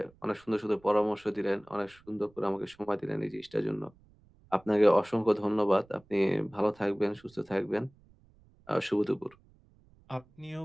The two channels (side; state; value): right; noise; rumble, 29 dB below the sound